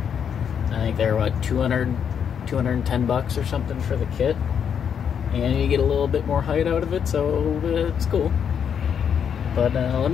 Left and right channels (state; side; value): quieter; right; 7.8 dB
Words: I think they're what, 210 bucks or something for the kit, and you get a little bit more height out of it, so it's cool. But let